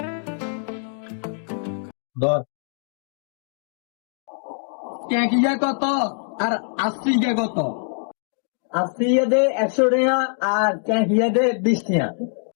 ধর। ক্যাঁক ইয়া কত আর আশি ইয়া কত? 80 ইয়ে দে 100 টাকা আর ক্যাঁ ইয়ে দে 20 টাকা।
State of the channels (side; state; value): right; silent; 63 dB below the other